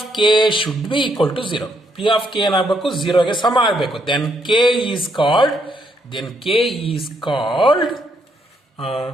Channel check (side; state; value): both; normal; correlation 0.74